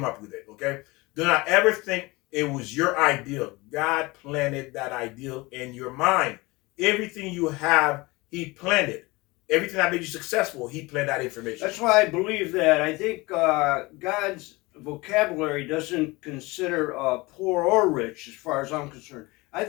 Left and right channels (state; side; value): quieter; right; 23.1 dB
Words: up with it, okay? Do not ever think it was your ideal. God planted that ideal in your mind. Everything you have, he planted. Everything that made you successful, he planted that information. That's why I believe that. I think God's vocabulary doesn't consider poor or rich, as far as I'm concerned. I